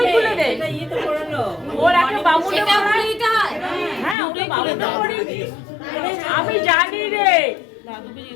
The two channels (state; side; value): drops out; right; at 4.2 s